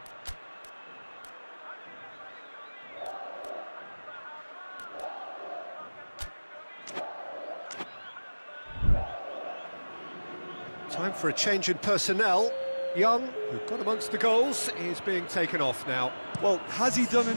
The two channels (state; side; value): inverted; both; correlation -1.00